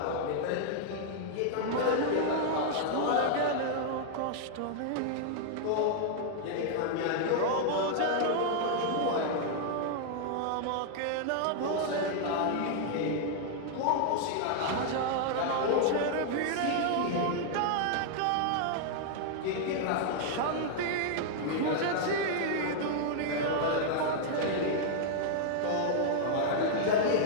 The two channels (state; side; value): different; both; correlation -0.01